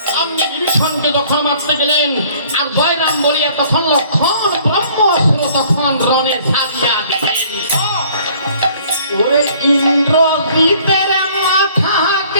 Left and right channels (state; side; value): inverted; both; correlation -0.56